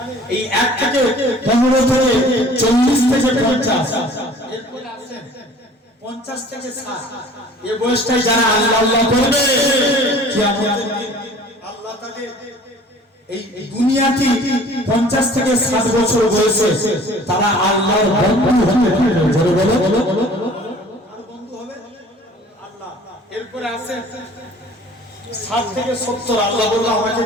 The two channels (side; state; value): both; normal; correlation 0.49